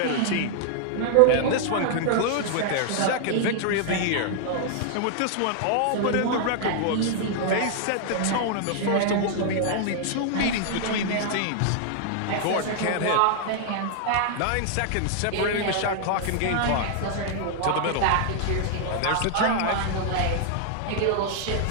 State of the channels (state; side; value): different; both; correlation 0.00